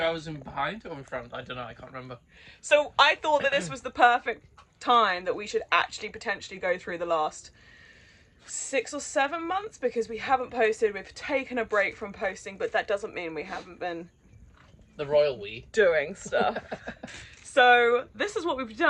hours in behind or in front? I don't know, I can't remember. So I thought that this was the perfect time that we should actually potentially go through the last 6 or 7 months, because we haven't posted. We've taken a break from posting, but that doesn't mean we haven't been the royal we doing stuff. So this is what we've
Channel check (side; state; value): both; identical; correlation 1.00